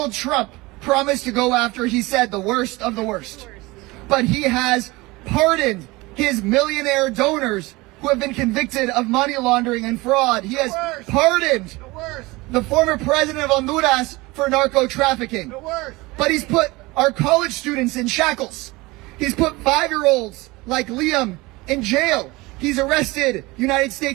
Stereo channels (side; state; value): left; quieter; 22.1 dB